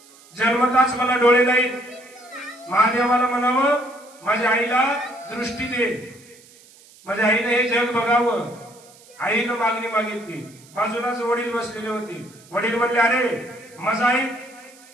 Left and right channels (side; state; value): right; noise; hiss, 25 dB below the sound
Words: जन्मताच मला डोळे नाहीत, महादेवाला म्हणावं माझ्या आईला दृष्टी दे, माझ्या आईने हे जग बघावं. आईनं मागणी मागितली. बाजूलाच वडील बसलेले होते. वडील म्हणले अरे माझा आई